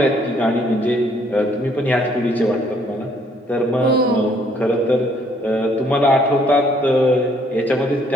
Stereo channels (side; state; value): both; normal; correlation 0.65